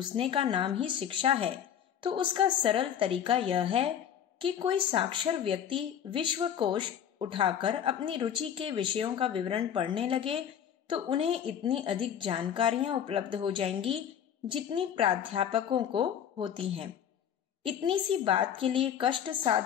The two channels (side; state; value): right; quieter; 9.1 dB